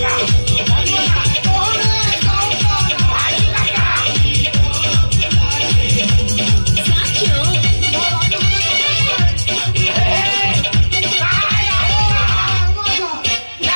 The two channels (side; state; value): both; inverted; correlation -1.00